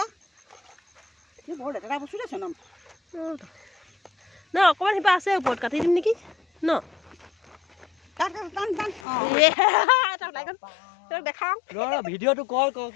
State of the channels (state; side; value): drops out; right; at 9.1 s